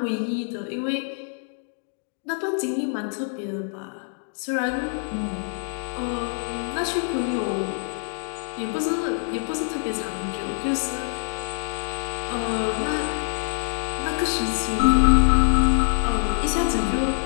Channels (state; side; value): silent; right; digital silence